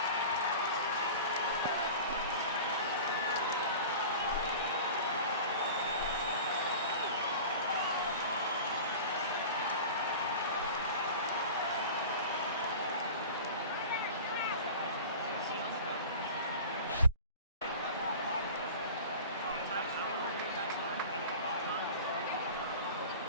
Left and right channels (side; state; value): both; inverted; correlation -0.37